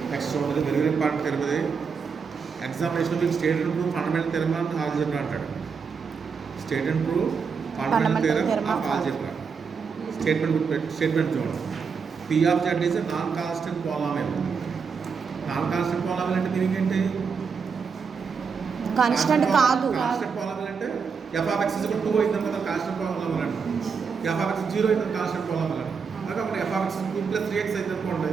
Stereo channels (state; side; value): quieter; left; 5.8 dB